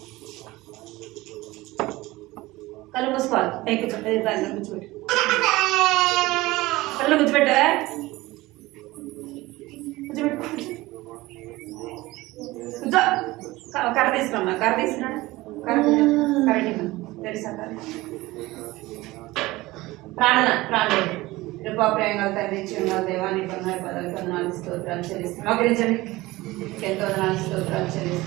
కళ్ళు మూసుకోవాలి. పైకి కూర్చోబెట్టు. కళ్ళు కూర్చోబెట్టు. కూర్చో. కర్ర తీసుకురమ్మా. కర్ర తీసుకురా. కరెక్ట్ తెలుసా? ప్రాణం ప్రేమలు తండ్రి చిన్న దేవాన్ని కొన్నాడు పదవి కొందనాలు స్తోత్రాలు చెల్లిస్తున్నాం. మోకరించండి. ఎంతో వందనాలు స్తోత్రాలు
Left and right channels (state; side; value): quieter; left; 19.5 dB